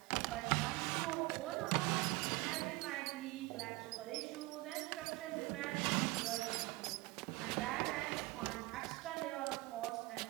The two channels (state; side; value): quieter; left; 22.2 dB